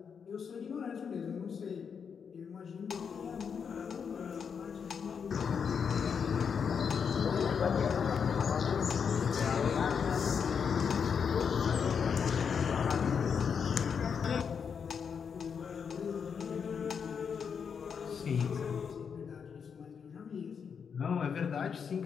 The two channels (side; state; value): right; quieter; 6.6 dB